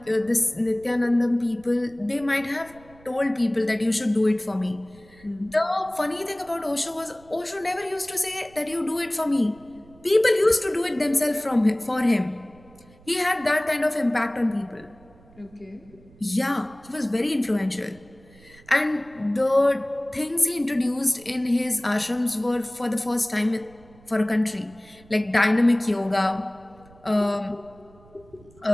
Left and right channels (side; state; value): right; noise; rumble, 26 dB below the sound